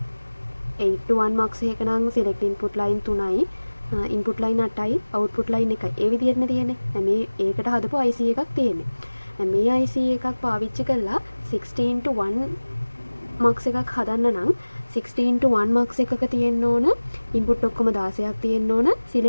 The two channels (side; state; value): both; inverted; correlation -1.00